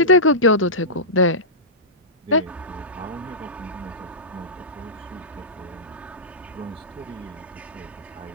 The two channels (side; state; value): both; normal; correlation -0.16